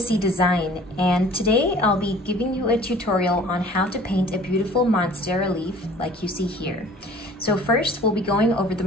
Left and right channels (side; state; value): both; normal; correlation 0.49